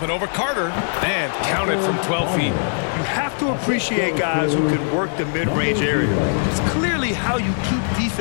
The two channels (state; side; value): silent; right; digital silence